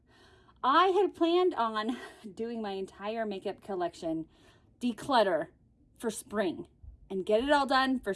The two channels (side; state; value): both; identical; correlation 1.00